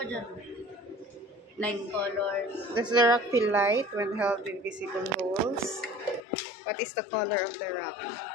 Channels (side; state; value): right; drops out; at 6.2 s